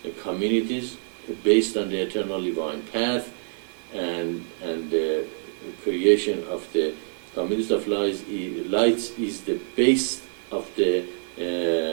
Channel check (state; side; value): silent; left; digital silence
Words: communities based on the eternal divine path, and the creation of the communities of lights is the base of the